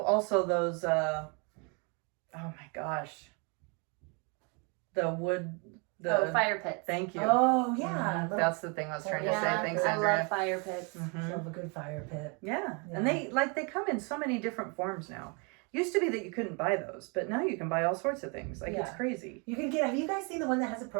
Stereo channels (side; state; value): left; quieter; 33.6 dB